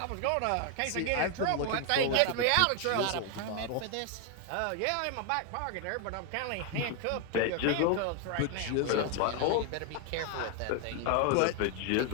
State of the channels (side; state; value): both; different; correlation 0.01